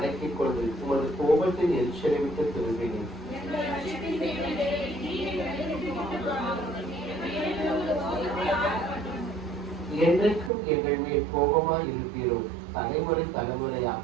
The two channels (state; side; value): drops out; left; at 10.5 s